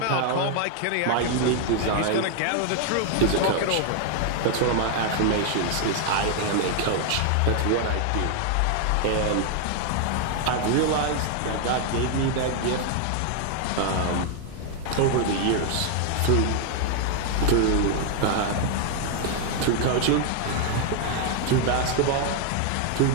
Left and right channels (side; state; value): both; different; correlation 0.00